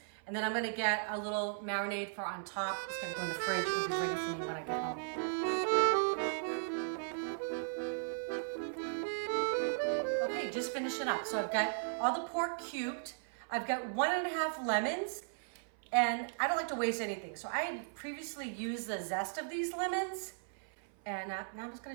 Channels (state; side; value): silent; left; 53 dB below the other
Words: And then I'm gonna get a little marinade for on top. It's gonna go in the fridge. It'll be ready for me when I get home. Okay, just finishing up. So I've got all the pork cubed. I've got 1.5 lemons. And I don't like to waste anything. So I had previously used the zest of these lemons. And now I'm just gonna